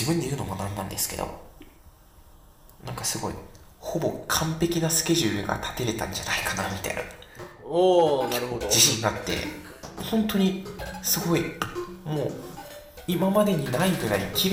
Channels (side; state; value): both; identical; correlation 1.00